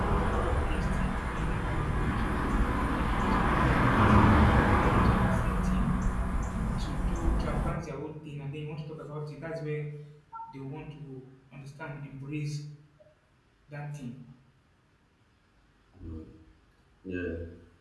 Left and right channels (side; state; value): both; identical; correlation 1.00